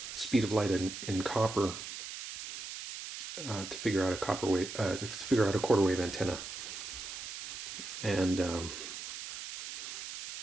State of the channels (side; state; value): right; noise; hiss, 8 dB below the sound